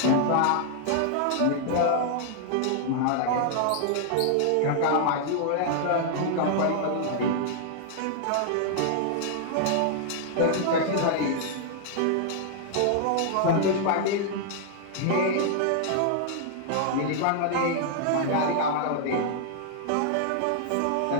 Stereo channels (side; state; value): both; different; correlation -0.01